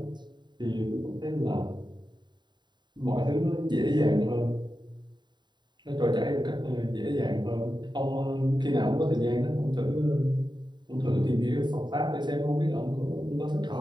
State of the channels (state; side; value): late; left; 0.22 ms